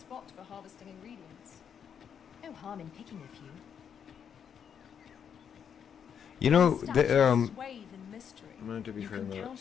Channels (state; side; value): quieter; right; 7.8 dB